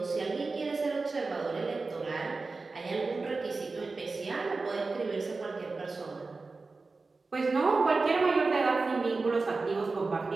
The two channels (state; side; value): quieter; left; 3.8 dB